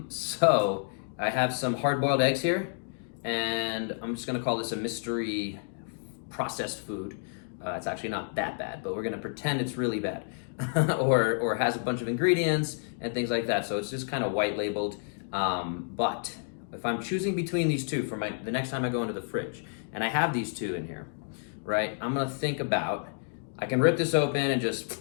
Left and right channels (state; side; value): silent; right; digital silence